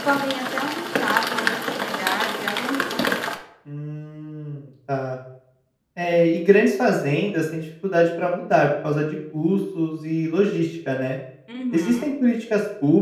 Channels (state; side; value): identical; both; correlation 1.00